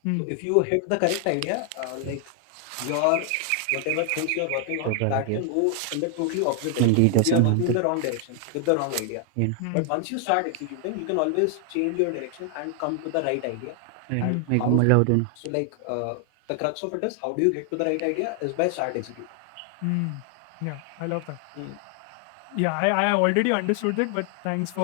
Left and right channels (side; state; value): both; different; correlation 0.00